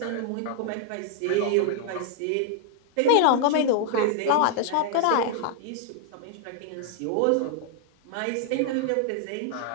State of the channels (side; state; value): both; different; correlation 0.00